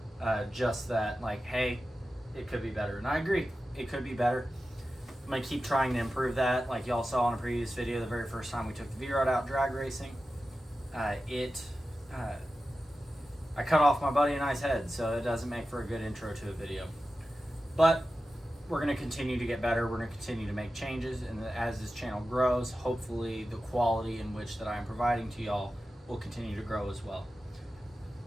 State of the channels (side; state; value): both; normal; correlation 0.93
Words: just that like, hey, it could be better. And I agree, it could be better. I'm going to keep trying to improve that. Like y'all saw in a previous video, the very first time we took the V-Rod out drag racing, I cut off my buddy and I's head, so it doesn't make for a good intro to a video. But we're going to continue to get better. We're going to continue to make changes, and as this channel grows, hopefully the quality in which that I'm providing to y'all will continue to grow as well.